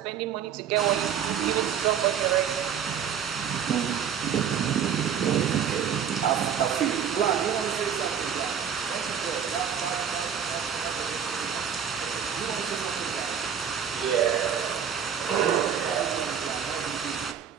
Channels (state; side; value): quieter; left; 8.0 dB